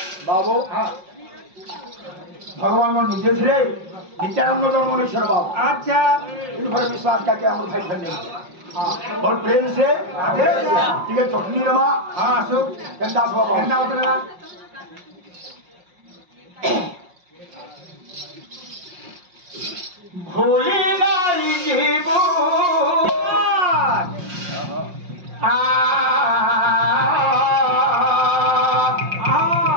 बाबू भगवान को निजे थे नित्यानंद जन्म ईश्वर बाबू अच्छा इन पर विश्वास करके हम भाई धन्य और प्रेम से ठीक है चटनी रमा हाँ सुख केंदा बाबा केंदा बतला भूली नहीं जीवो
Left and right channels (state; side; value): late; left; 5.6 ms